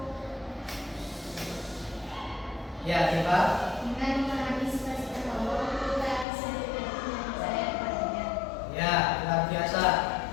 Ya, coba. Dengan memahami sifat-sifat Allah, kita bisa lebih percaya kepadanya. Ya, luar biasa.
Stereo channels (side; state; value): right; drops out; at 6.2 s